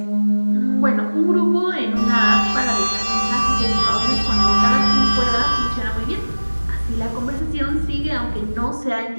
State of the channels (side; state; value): both; inverted; correlation -1.00